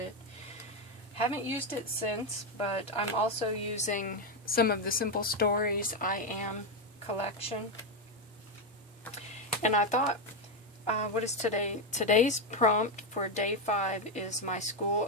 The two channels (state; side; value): normal; both; correlation 0.07